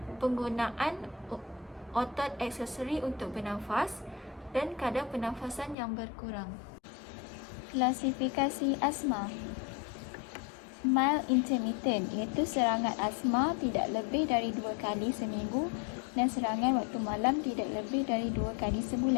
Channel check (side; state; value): right; drops out; at 5.8 s